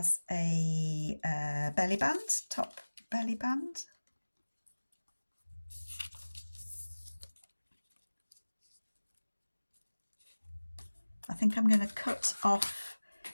a belly band, top belly band. I think I'm going to cut off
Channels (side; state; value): both; inverted; correlation -1.00